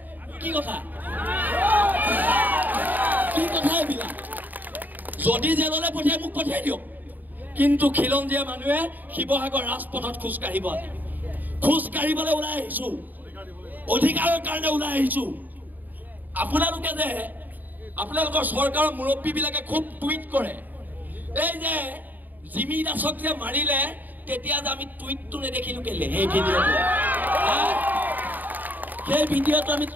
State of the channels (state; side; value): late; left; 0.086 ms